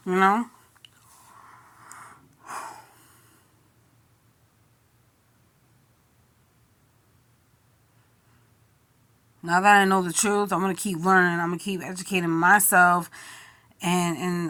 you know? Now that I know the truth, I'm going to keep learning. I'm going to keep educating myself and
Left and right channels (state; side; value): identical; both; correlation 1.00